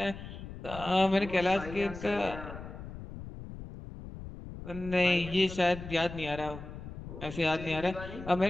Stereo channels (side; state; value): left; noise; rumble, 11 dB below the sound